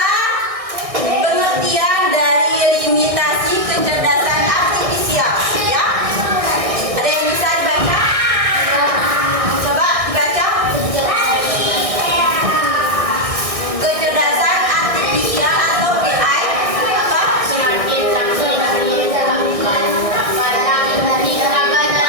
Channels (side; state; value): left; late; 1.6 ms